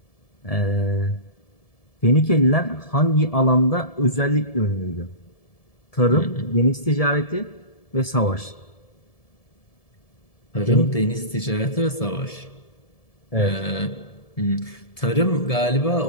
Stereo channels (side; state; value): right; late; 1.7 ms